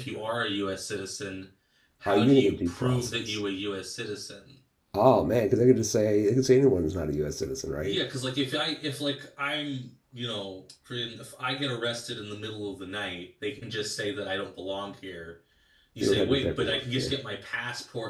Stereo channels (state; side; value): identical; both; correlation 1.00